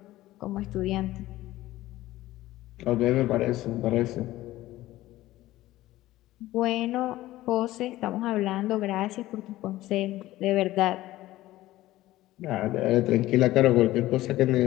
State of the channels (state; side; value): quieter; right; 16.2 dB